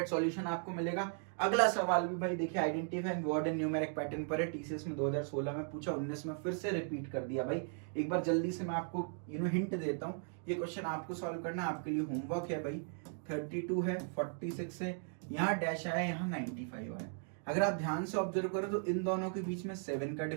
सॉल्यूशन आपको मिलेगा। अगला सवाल भी भाई देखिए, identify word and numeric pattern पर है, टीसीएस में 2016 में पूछा, 19 में फिर से रिपीट कर दिया भाई। एक बार जल्दी से मैं आपको हिंट देता हूँ, ये क्वेश्चन आपको सॉल्व करना, आपके लिए होमवर्क है भाई। 32 है, 46 है, यहाँ डैश आया, यहाँ 95 आया। अगर आप ध्यान से ऑब्जर्व करो तो इन दोनों के बीच में 7 का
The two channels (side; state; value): left; silent; 53 dB below the other